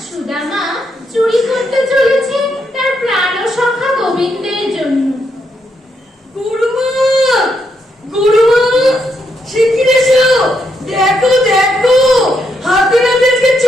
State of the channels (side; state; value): both; normal; correlation 0.78